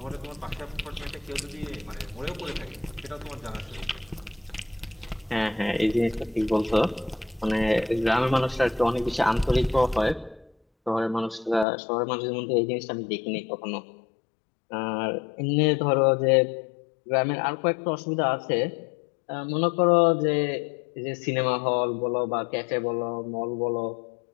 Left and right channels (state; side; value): drops out; right; at 11.7 s